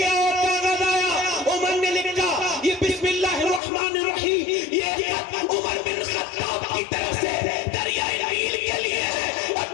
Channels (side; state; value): right; drops out; at 3.6 s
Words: آؤ. کاغذ آیا, عمر نے لکھا یہ بسم اللہ الرحمن الرحیم, یہ عمر بن خطاب کی طرف سے دریائے نیل کے لیے ہے. اور